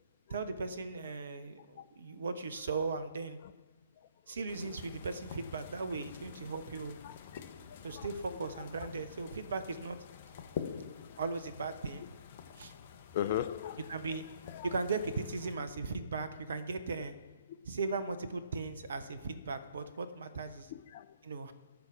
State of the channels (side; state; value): both; inverted; correlation -0.65